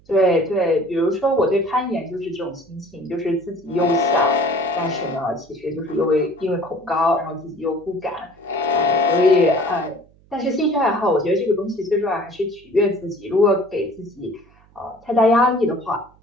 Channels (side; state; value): right; noise; hum, 30 dB below the sound